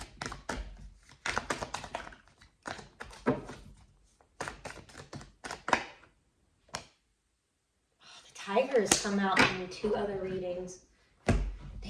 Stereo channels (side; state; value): both; identical; correlation 1.00